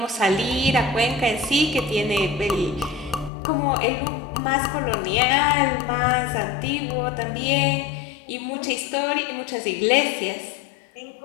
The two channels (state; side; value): drops out; right; at 3.3 s